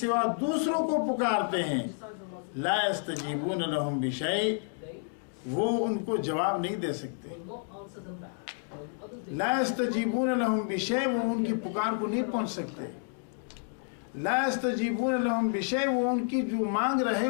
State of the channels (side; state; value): right; silent; 58 dB below the other